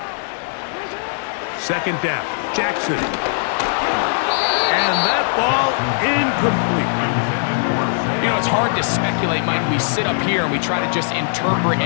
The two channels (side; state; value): right; silent; 59 dB below the other